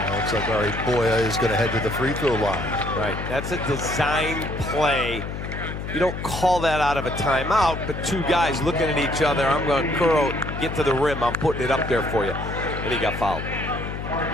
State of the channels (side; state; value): left; noise; hum, 6 dB below the sound